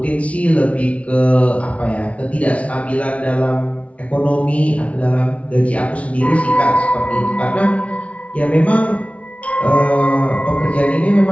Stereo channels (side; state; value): right; late; 0.064 ms